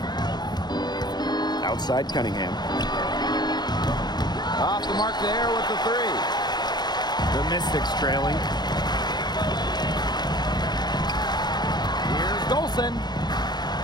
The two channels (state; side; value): late; right; 0.20 ms